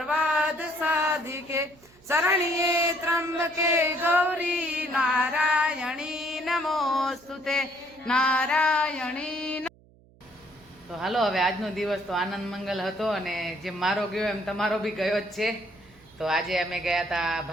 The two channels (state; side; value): noise; right; hum, 28 dB below the sound